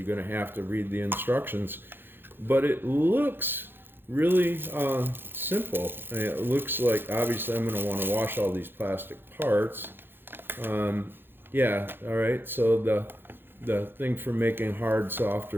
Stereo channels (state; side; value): late; left; 0.10 ms